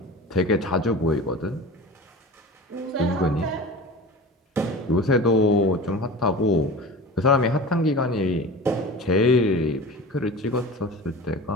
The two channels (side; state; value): both; normal; correlation 0.34